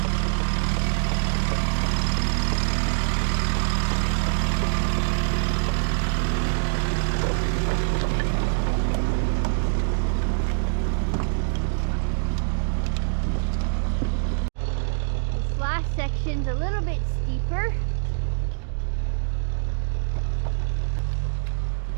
Section's a little bit steeper.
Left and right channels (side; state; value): left; silent; digital silence